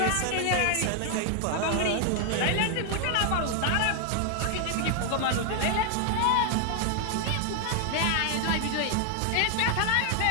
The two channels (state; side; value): different; both; correlation 0.00